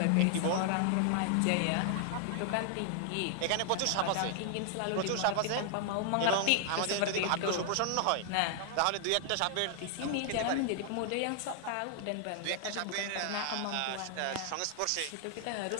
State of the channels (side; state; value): both; different; correlation 0.00